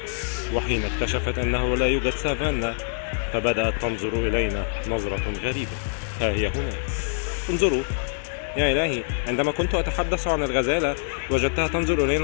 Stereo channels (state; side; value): silent; right; 62 dB below the other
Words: وحين اكتشفت أنه لا يوجد سافانا فبدأت تنظر إلينا نظرة غريبة. ها هي هنا، انظروا. يا إلهي، عندما كنت أتحدث عن الغزالة وجدتها تنظر إلي